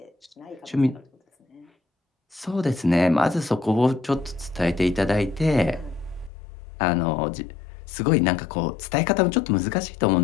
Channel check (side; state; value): right; drops out; at 6.3 s